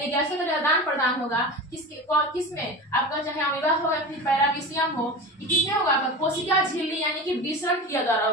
गैसों का आदान प्रदान होगा किसमें आपका, चाहे अमीबा हो या फिर पैरामीशियम हो, किसमें होगा आपका, कोशिका झिल्ली यानी कि विसरण क्रिया द्वारा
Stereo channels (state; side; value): normal; both; correlation 0.29